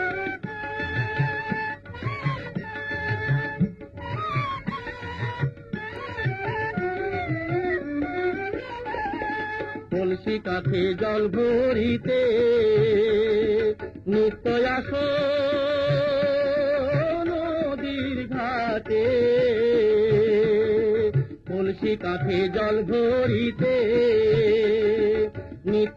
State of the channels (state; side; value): identical; both; correlation 1.00